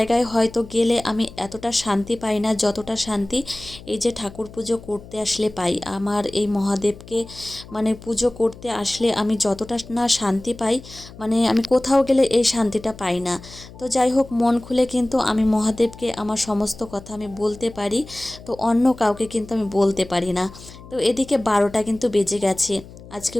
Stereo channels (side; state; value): left; noise; hum, 18 dB below the sound